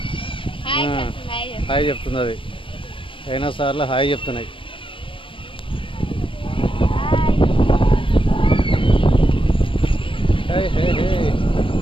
హాయ్ చెప్తుంది అది. డైనోసార్లు హాయ్ చెప్తున్నాయి. హే హే హే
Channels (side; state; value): right; late; 0.25 ms